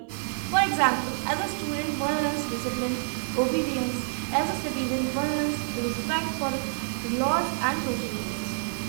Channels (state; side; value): silent; left; digital silence